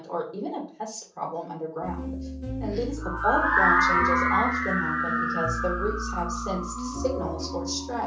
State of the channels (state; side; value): identical; both; correlation 1.00